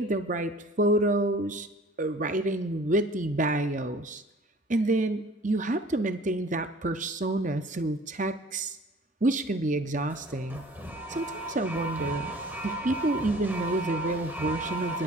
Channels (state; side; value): normal; both; correlation 0.48